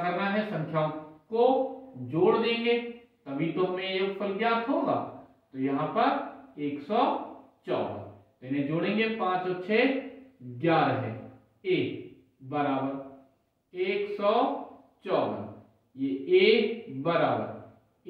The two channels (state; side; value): identical; both; correlation 1.00